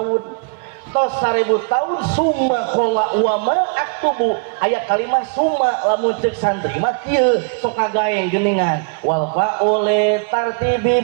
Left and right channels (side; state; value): left; quieter; 39.4 dB